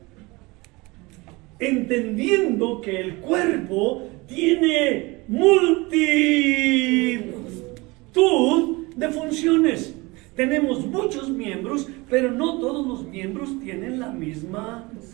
entendiendo que el cuerpo tiene multitud de funciones. Tenemos muchos miembros, pero no todos los miembros tienen la misma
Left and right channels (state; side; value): quieter; left; 24.1 dB